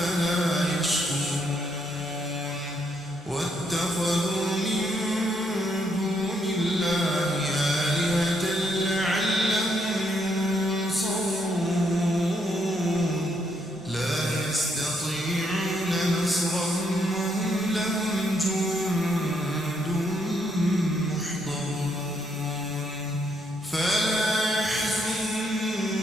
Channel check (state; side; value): normal; both; correlation 0.74